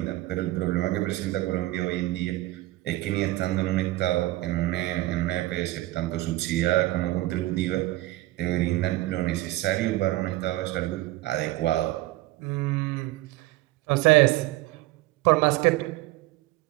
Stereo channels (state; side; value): quieter; left; 17.9 dB